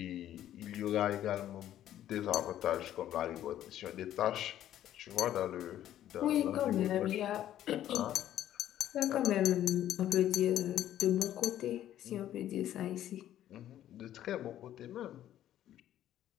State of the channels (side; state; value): right; quieter; 12.0 dB